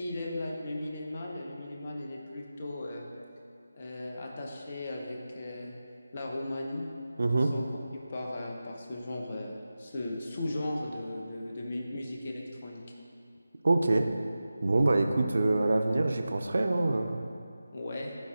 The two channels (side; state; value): both; inverted; correlation -0.94